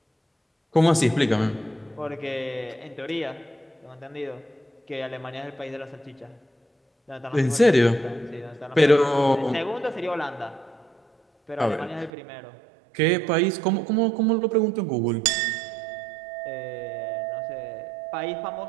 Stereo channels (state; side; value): drops out; left; at 12.1 s